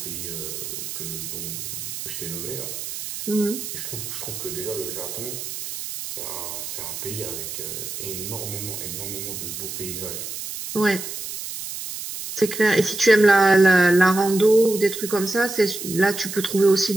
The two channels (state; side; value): noise; right; hiss, 7 dB below the sound